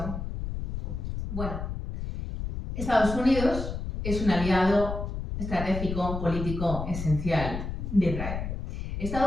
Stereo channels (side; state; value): left; noise; rumble, 5 dB below the sound